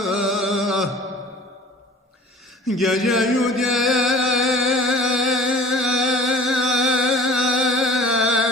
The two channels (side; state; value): both; normal; correlation 0.46